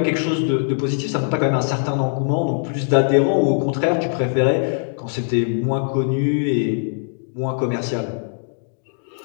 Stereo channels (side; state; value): right; silent; digital silence